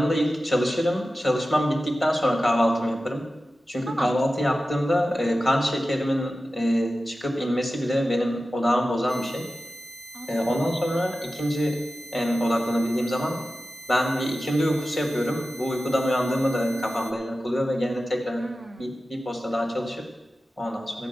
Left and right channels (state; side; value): normal; both; correlation 0.94